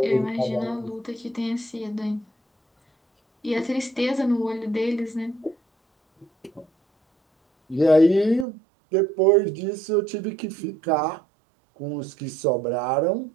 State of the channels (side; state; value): left; drops out; at 8.5 s